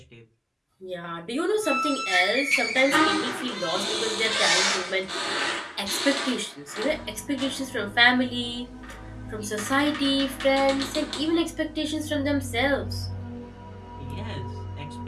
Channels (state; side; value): identical; both; correlation 1.00